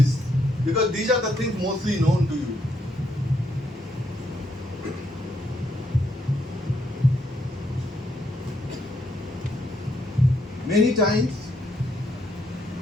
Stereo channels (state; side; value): normal; both; correlation 0.75